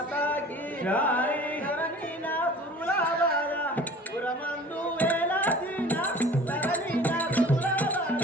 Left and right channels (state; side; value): normal; both; correlation 0.44